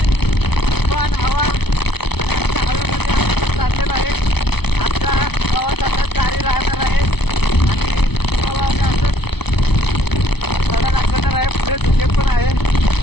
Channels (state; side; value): late; right; 0.98 ms